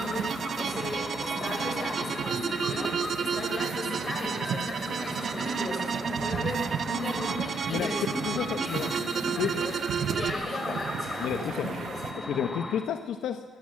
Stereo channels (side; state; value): both; normal; correlation 0.72